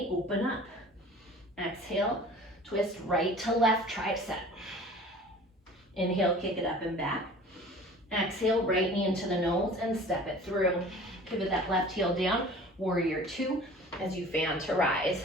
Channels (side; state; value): both; normal; correlation 0.44